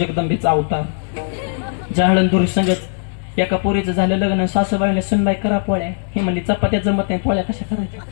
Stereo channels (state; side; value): silent; right; 62 dB below the other